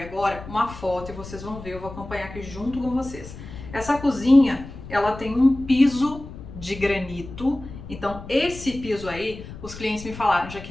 uma foto e vocês vão ver, eu vou acompanhar aqui junto com vocês. Essa cozinha, ela tem um piso de granito, então esse piso aí, os clientes me falaram:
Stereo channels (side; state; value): left; noise; rumble, 13 dB below the sound